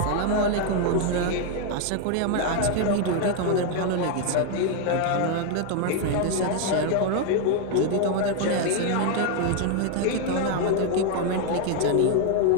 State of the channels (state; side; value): different; both; correlation 0.01